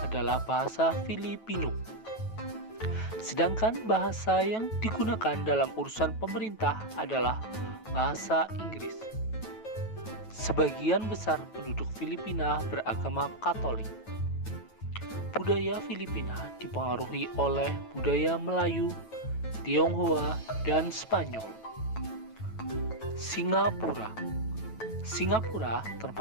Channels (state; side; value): late; right; 9.2 ms